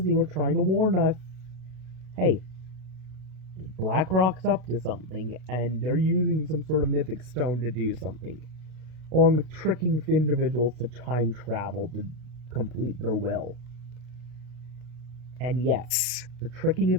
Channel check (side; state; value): left; late; 33 ms